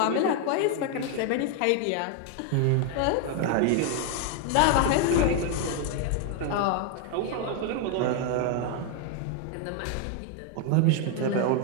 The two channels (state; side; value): different; both; correlation 0.01